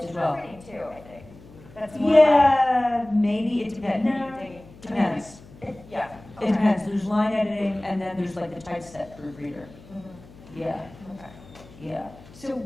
as well. proofreading too, I think. That's more Yeah, maybe, it depends. like, No, depends. yeah. It depends, there's line editing, and then there's like the typeset proofreader. Mhm. Yeah, Okay. yeah, So,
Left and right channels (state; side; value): noise; left; hum, 21 dB below the sound